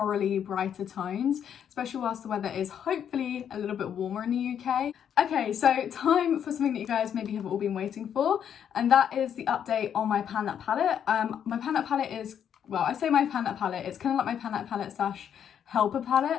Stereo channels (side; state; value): right; quieter; 8.8 dB